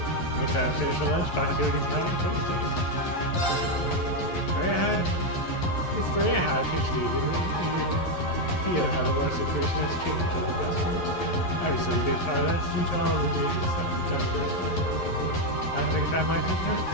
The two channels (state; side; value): late; right; 11 ms